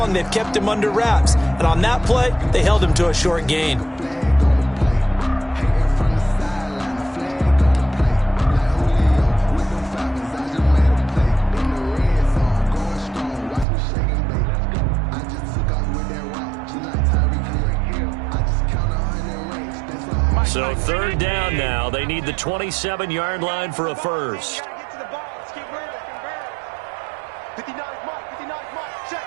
they've kept him under wraps. And on that play, they held him to a short gain. So 3rd down now. They need the 27-yard line for a first.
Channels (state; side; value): drops out; left; at 13.7 s